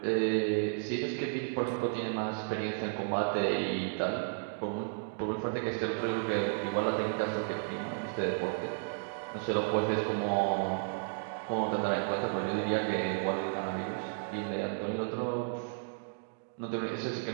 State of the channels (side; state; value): left; silent; digital silence